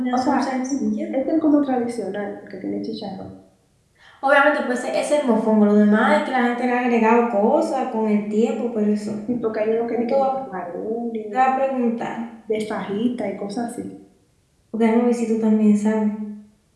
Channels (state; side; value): identical; both; correlation 1.00